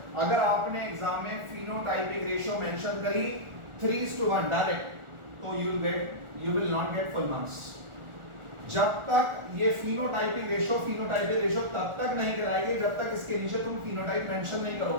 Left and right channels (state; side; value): late; left; 1.4 ms